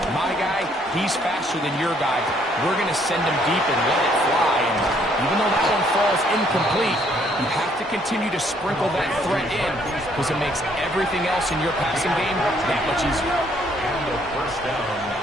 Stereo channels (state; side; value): normal; both; correlation 0.66